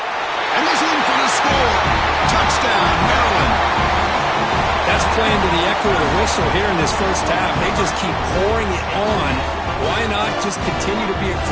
And he's in for the score. Touchdown, Maryland. That's playing to the echo of the whistle here in this first half. They just keep pouring it on. Why not just continue to be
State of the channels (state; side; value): identical; both; correlation 1.00